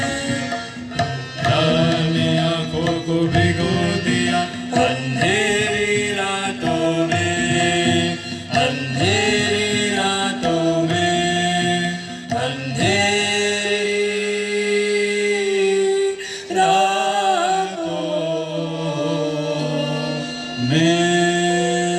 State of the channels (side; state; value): both; identical; correlation 1.00